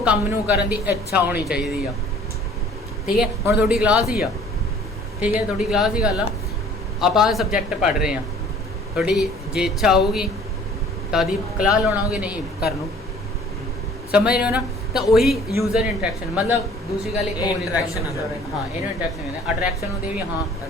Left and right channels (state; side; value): normal; both; correlation 0.52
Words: ਕੰਮ ਨੂੰ ਕਰਨ ਦੀ ਇੱਛਾ ਹੋਣੀ ਚਾਹੀਦੀ ਆ ਠੀਕ ਹੈ ਹੁਣ ਤੁਹਾਡੀ ਕਲਾਸ ਹੀ ਆ ਠੀਕ ਹੈ ਤੁਹਾਡੀ ਕਲਾਸ ਦੀ ਗੱਲ ਆ ਆਪਾਂ ਸਬਜੈਕਟ ਪੜ੍ਹ ਰਹੇ ਹਾਂ ਤੁਹਾਡੀ ਜੇ ਇੱਛਾ ਹੋਊਗੀ ਤਾਂ ਦੀ ਕਲਾਸ ਲਾਉਣਾਓਗੇ ਨਹੀਂ ਕਰਨ ਨੂੰ ਸਮਝ ਰਹੇ ਹੋ ਨਾ ਤਾਂ ਉਹੀ ਯੂਜ਼ਰ ਇੰਟਰੈਕਸ਼ਨ ਮਤਲਬ ਦੂਸਰੀ ਗੱਲ ਇੱਕ ਹੋਰ ਇੰਟਰੈਕਸ਼ਨ ਹਾਂ ਇਹਨੂੰ ਇੰਟਰੈਕਸ਼ਨ ਕਹਿੰਦੇ ਅਟਰੈਕਸ਼ਨ ਹੁੰਦੀ ਵੀ ਹਾਂ